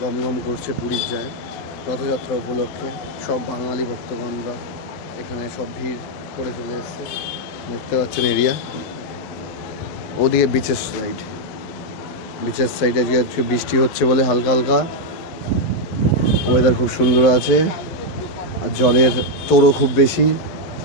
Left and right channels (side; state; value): right; late; 11 ms